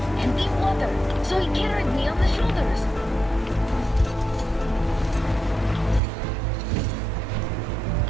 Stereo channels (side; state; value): left; drops out; at 6.0 s